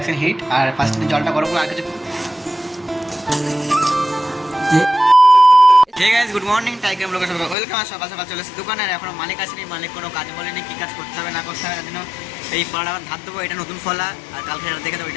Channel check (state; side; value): drops out; right; at 7.6 s